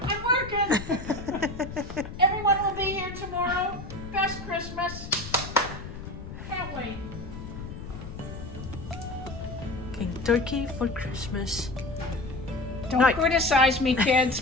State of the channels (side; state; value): left; noise; rumble, 11 dB below the sound